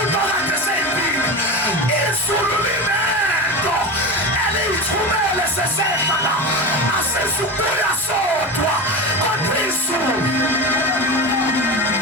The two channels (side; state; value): both; normal; correlation 0.24